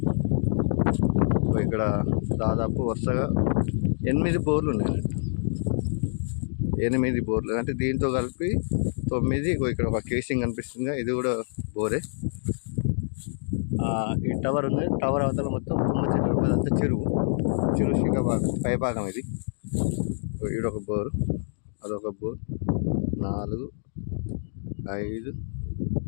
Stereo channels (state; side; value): silent; right; digital silence